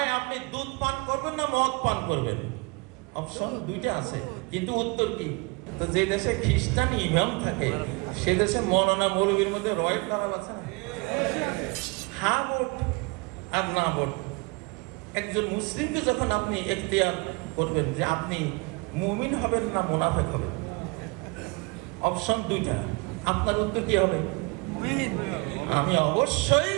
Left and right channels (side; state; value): left; quieter; 27.8 dB